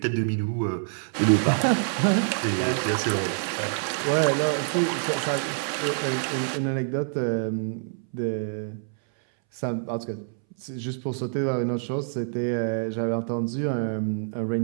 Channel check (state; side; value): silent; left; 61 dB below the other